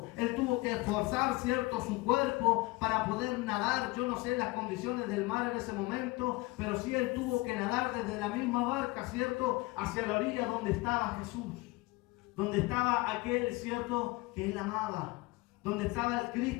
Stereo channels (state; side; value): quieter; right; 22.3 dB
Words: Él tuvo que esforzar, ¿cierto?, su cuerpo para poder nadar. Yo no sé las condiciones del mar en ese momento, pero sí él tuvo que nadar desde la misma barca, ¿cierto?, hacia la orilla donde estaba Jesús. Donde estaba aquel, ¿cierto?, que él amaba. Donde estaba el